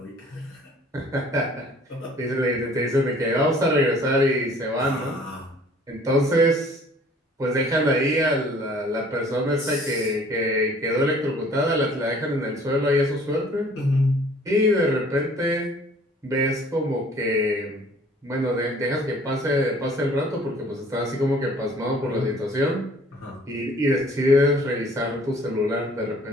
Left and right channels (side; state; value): both; normal; correlation 0.54